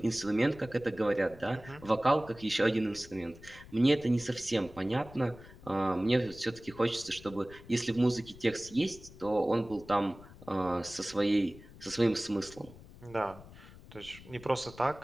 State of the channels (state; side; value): noise; left; rumble, 19 dB below the sound